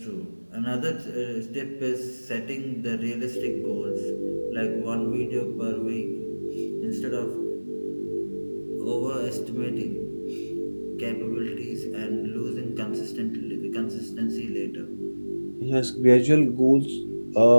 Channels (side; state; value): both; inverted; correlation -1.00